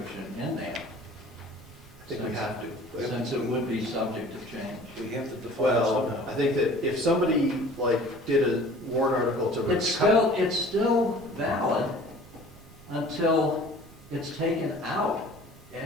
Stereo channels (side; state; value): right; noise; rumble, 22 dB below the sound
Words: in there? I think we have to. Since it would be subject to change. We have to define it Well, I somehow. think that if somebody, did a warrant article to. It's still valid until it's taken out.